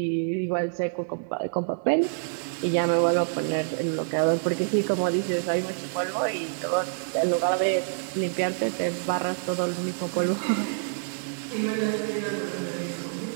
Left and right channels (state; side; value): silent; left; digital silence